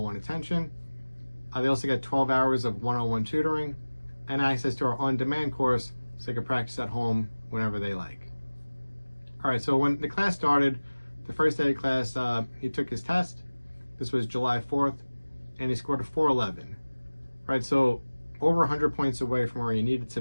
attention. They also get 12 hours of one-on-one tutoring and access to our on-demand course so they can practice at home whenever they like. All right, so when the class started, the first day of class, he took his test. This was July 4th, and he scored a 411. Right, so over 100 points away from where he needed to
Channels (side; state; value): both; inverted; correlation -1.00